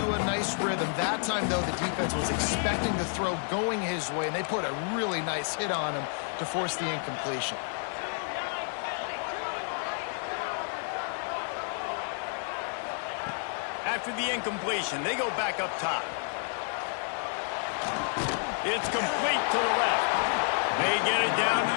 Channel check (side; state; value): right; silent; 58 dB below the other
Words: a nice rhythm. That time, though, the defense was expecting the throw going his way, and they put a really nice hit on him to force the incompletion. After the incompletion, they go back up top. It's complete to the left. They get it down to